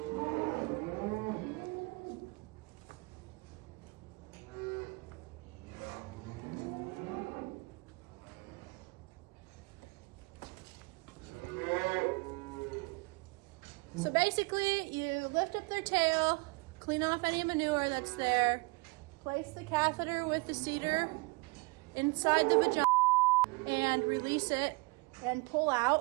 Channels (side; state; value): left; quieter; 27.7 dB